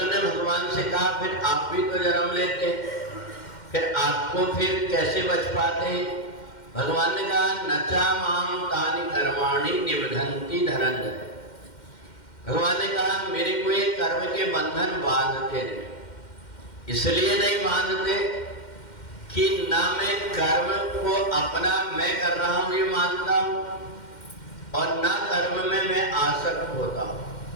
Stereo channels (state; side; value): late; right; 2.1 ms